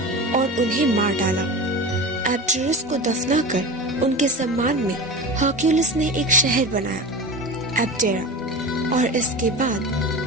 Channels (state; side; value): normal; both; correlation 0.29